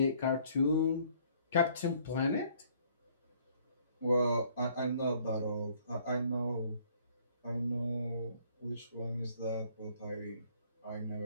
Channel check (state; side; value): inverted; both; correlation -0.61